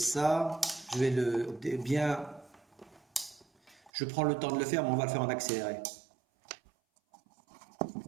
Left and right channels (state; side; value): drops out; left; at 3.9 s